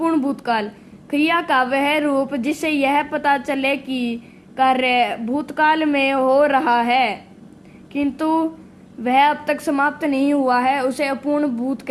भूतकाल। क्रिया का वह रूप जिससे यह पता चले कि कार्य भूतकाल में हो रहा है किंतु वह अब तक समाप्त नहीं हुआ है उसे अपूर्ण भूत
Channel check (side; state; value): both; identical; correlation 1.00